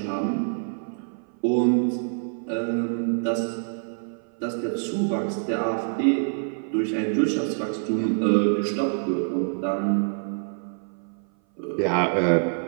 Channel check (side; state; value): left; silent; 57 dB below the other